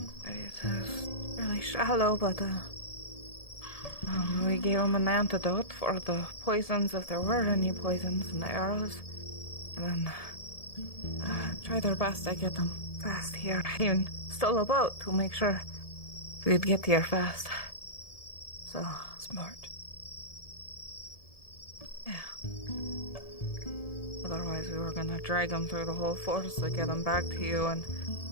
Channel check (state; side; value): late; right; 1.7 ms